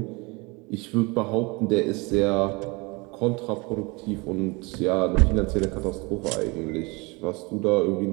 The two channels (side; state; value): left; quieter; 26.9 dB